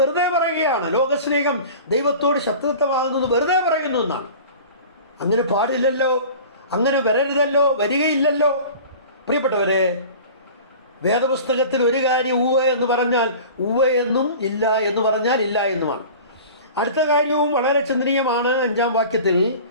പറയുകയാണ്. ലോകസ്നേഹം ദൈവത്തോട് ശത്രുത്വമാകുന്നത് വെറുതെ പറയുന്നു എന്നാണ്. അങ്ങനെ പാടില്ലല്ലോ, അങ്ങനെ വരരുതല്ലോ, വരികയില്ലല്ലോ. പ്രിയപ്പെട്ടവരെ, വേദപുസ്തകത്തിൽ ഒരു കാര്യം ഉവ്വ എന്ന് പറഞ്ഞാൽ ഉവ്വ എന്നും, ഇല്ല എന്ന് പറഞ്ഞാൽ ഇല്ല എന്നുമാണ്. അടുത്ത കാര്യവും വളരെ ചിന്തനീയമാണ്. 5-ാം വാക്യത്തിൽ,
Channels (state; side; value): inverted; both; correlation -0.39